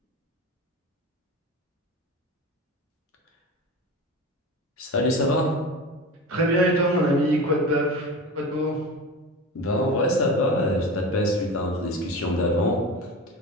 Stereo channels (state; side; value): normal; both; correlation 0.30